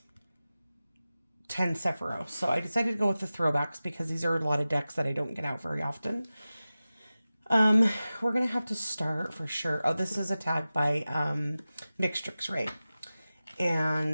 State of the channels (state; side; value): inverted; both; correlation -0.96